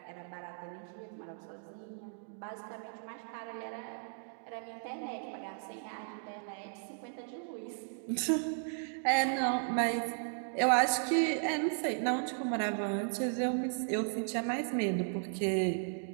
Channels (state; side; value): silent; left; digital silence